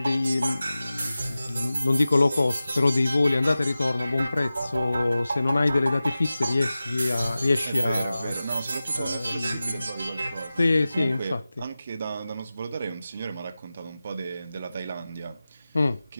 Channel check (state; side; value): inverted; both; correlation -0.95